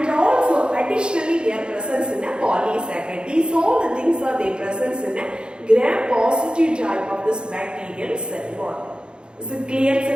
also additionally they are present in a polysaccharide. These all the things are they present in a gram positive type of this bacterial cell wall. Is it clear,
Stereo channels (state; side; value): late; left; 0.051 ms